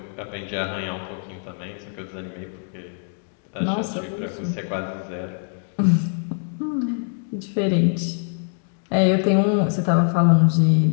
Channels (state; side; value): silent; right; 63 dB below the other